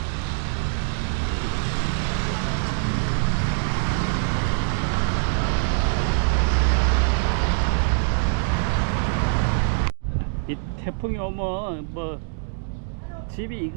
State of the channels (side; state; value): left; silent; 63 dB below the other